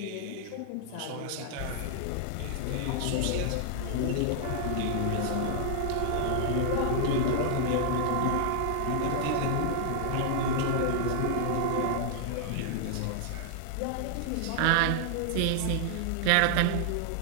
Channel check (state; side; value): different; both; correlation -0.01